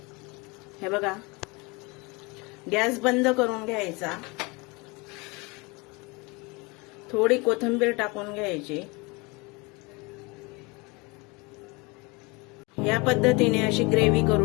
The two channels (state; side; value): quieter; right; 26.9 dB